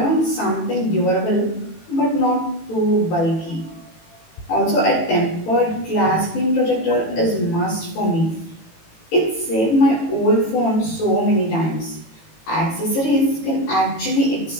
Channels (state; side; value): late; right; 18 ms